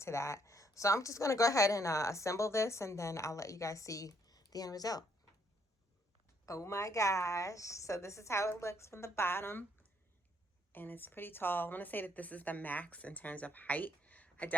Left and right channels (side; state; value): both; normal; correlation 0.69